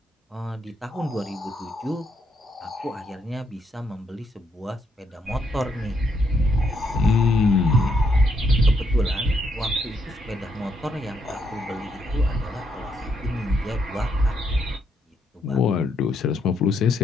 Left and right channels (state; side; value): normal; both; correlation 0.75